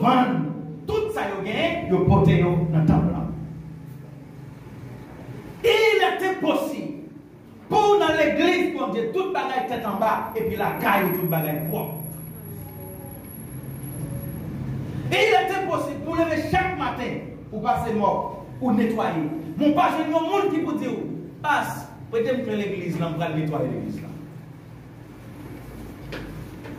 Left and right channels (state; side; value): identical; both; correlation 1.00